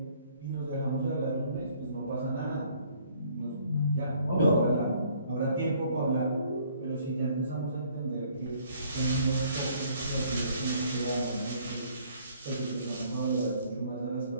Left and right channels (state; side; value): inverted; both; correlation -0.61